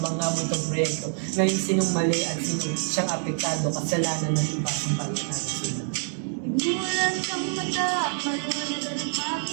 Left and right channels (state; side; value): silent; left; 61 dB below the other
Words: muntong proyekto. Ngayon sinong mali at sinong siyang apektado, kasalanan ng iba sa palitan sila. Imulat ang mata, maliwanagan at